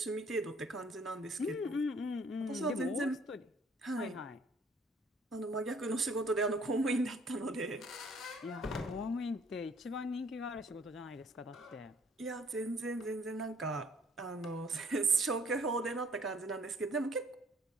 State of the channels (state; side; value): normal; both; correlation 0.60